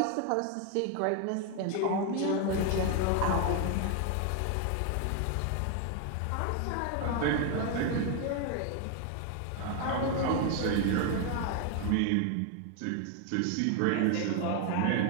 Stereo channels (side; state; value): both; different; correlation 0.01